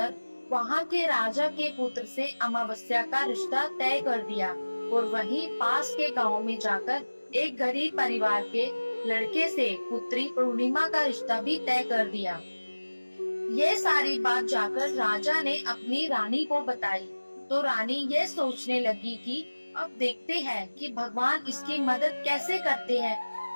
वहाँ के राजा के पुत्र से अमावस्या का रिश्ता तय कर दिया और वहीं पास के गांव में जाकर एक गरीब परिवार के लड़के से पुत्री पूर्णिमा का रिश्ता भी तय कर दिया। ये सारी बात जाकर राजा ने अपनी रानी को बताई, तो रानी ये सोचने लगी कि अब देखते हैं कि भगवान इसकी मदद कैसे करते हैं।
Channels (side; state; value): both; inverted; correlation -1.00